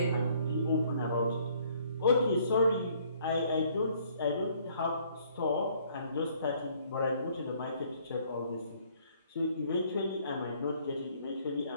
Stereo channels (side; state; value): both; inverted; correlation -0.62